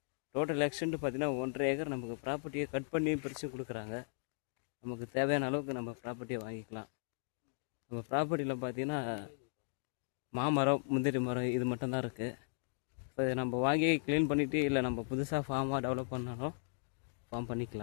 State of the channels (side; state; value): right; silent; digital silence